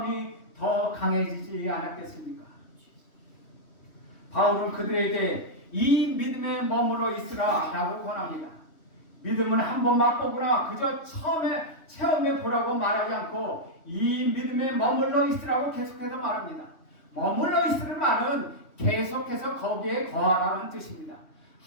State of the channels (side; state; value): right; late; 3.1 ms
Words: 더 강해지지 않았겠습니까? 바울은 그들에게 이 믿음에 머물러 있으라 라고 권합니다. 믿음은 한번 맛보거나 그저 체험해 보라고 말하지 않고 이 믿음에 머물러 있으라고 계속해서 말합니다. 머물러 있으라는 말은 계속해서 거기에 거하라는 뜻입니다.